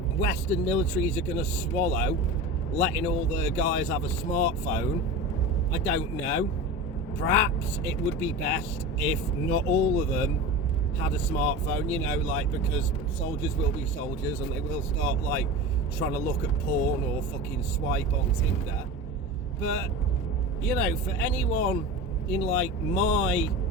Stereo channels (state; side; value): normal; both; correlation 0.29